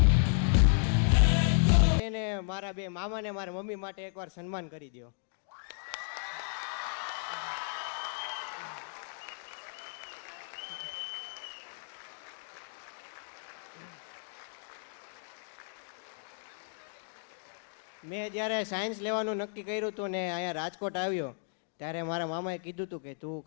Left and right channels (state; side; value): silent; right; digital silence